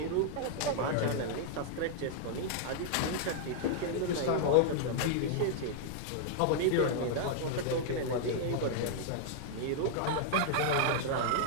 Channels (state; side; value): different; both; correlation -0.01